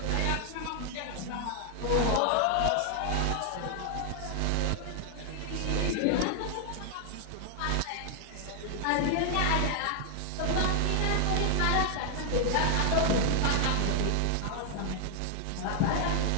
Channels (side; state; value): both; different; correlation 0.00